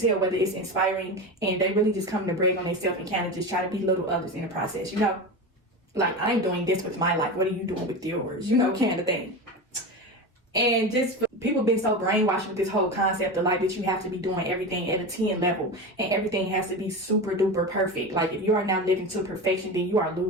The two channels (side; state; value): both; normal; correlation 0.24